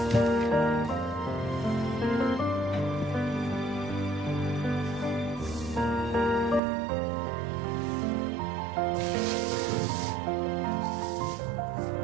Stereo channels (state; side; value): drops out; left; at 6.6 s